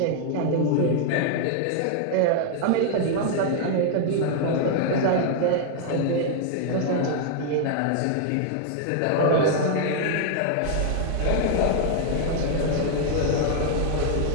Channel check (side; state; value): both; different; correlation -0.01